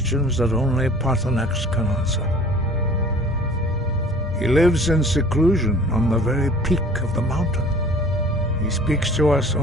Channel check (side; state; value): both; normal; correlation 0.48